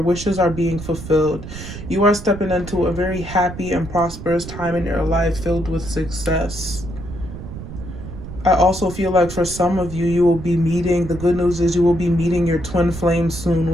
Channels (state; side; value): noise; right; rumble, 11 dB below the sound